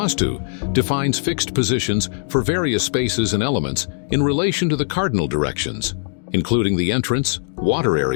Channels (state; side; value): silent; right; digital silence